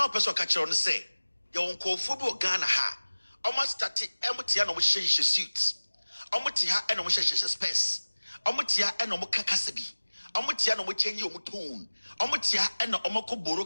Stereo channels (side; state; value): both; inverted; correlation -1.00